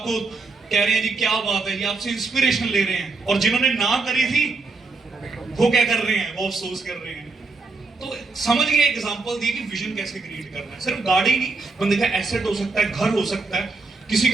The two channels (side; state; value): left; quieter; 3.8 dB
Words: कह रहे हैं जी क्या बात है, ये आपसे इंस्पिरेशन ले रहे हैं। और जिन्होंने ना करी थी वो क्या कर रहे हैं? वो अफसोस कर रहे हैं। तो समझ गए, एग्जांपल दी कि विजन कैसे क्रिएट करना है। सिर्फ गाड़ी नहीं, बंदे का एसेट हो सकता है, घर हो सकता है, किसी